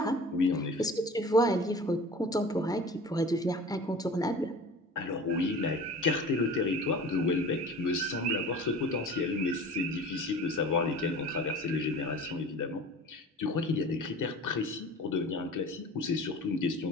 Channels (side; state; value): both; normal; correlation 0.40